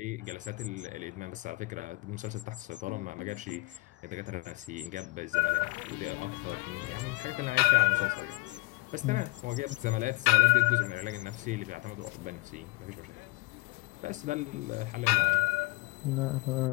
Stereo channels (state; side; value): quieter; right; 24.3 dB